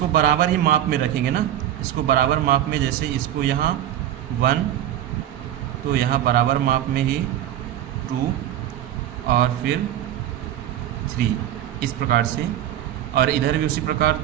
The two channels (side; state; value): left; quieter; 11.8 dB